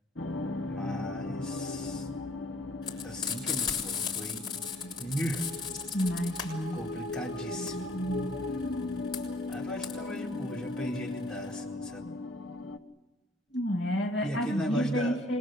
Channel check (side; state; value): both; normal; correlation 0.59